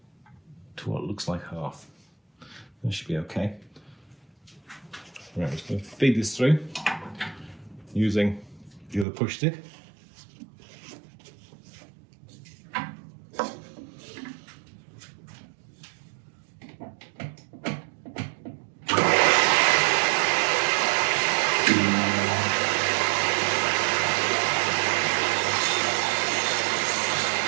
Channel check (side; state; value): left; drops out; at 9.1 s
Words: to what looks like half. That should be okay. Right, I'm just going to feed this through using the other push stick.